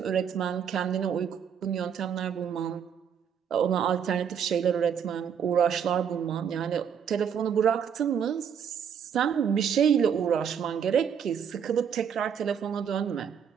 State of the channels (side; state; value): left; quieter; 7.8 dB